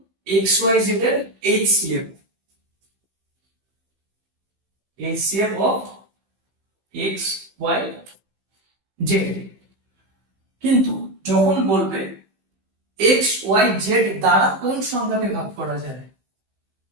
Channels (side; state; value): left; late; 16 ms